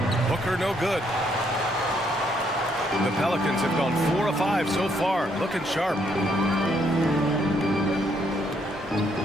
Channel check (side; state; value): both; normal; correlation 0.71